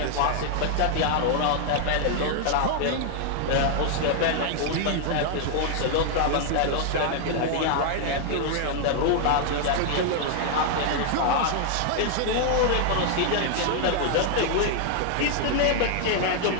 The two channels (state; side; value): different; both; correlation 0.00